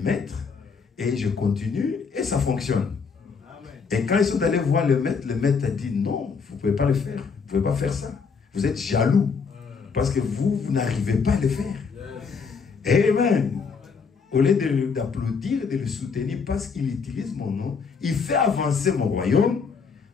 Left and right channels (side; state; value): right; quieter; 5.5 dB